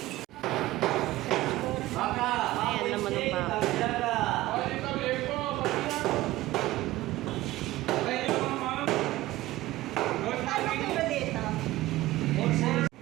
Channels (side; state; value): left; quieter; 17.1 dB